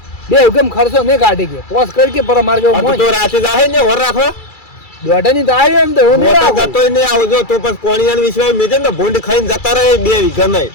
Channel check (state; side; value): late; right; 2.3 ms